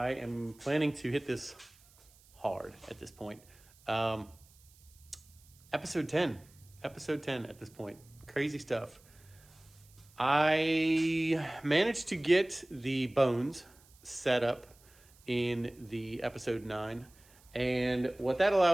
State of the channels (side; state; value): right; noise; hiss, 27 dB below the sound